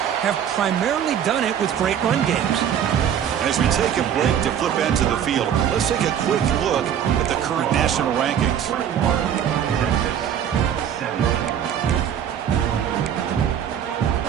have primarily done it with great run games. And as we take a break to flip into the field, let's take a quick look at the current national rankings.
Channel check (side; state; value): left; quieter; 9.2 dB